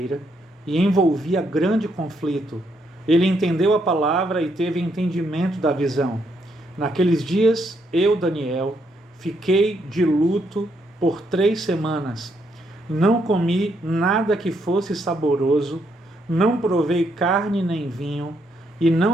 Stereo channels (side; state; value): both; normal; correlation 0.75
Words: e envolvia grande conflito. Ele entendeu a palavra e teve entendimento da visão. Naqueles dias, eu, Daniel, fiquei de luto por 3 semanas. Não comi nada que fosse saboroso, não provei carne nem vinho, e